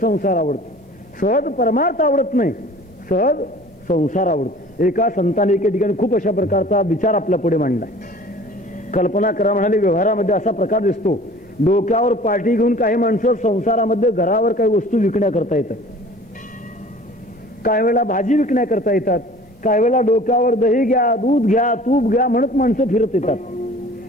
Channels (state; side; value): normal; both; correlation 0.46